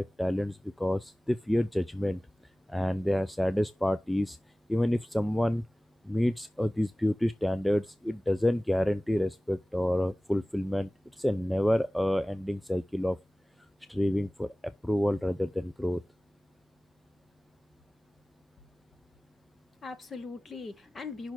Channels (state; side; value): normal; both; correlation 0.98